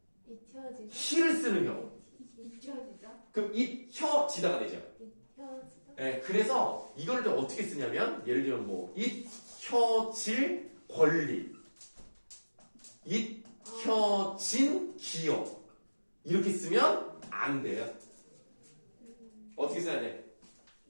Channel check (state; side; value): inverted; both; correlation -1.00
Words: 잊혀지다. 히를 쓰는 경우. 잊혀지다. 그럼 잊혀지다가 되죠. 잊혀지다. 네, 그래서 이걸 좀 어떻게 쓰냐면, 예를 들면 뭐 잊혀질 권리, 잊혀진 기억, 이렇게 쓰면 안 돼요. 어떻게 써야 돼?